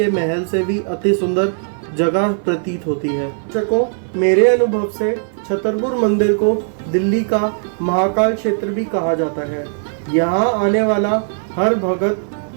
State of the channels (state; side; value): silent; left; 56 dB below the other